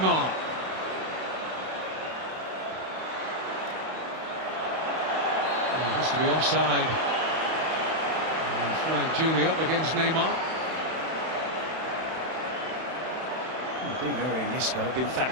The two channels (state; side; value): late; left; 31 ms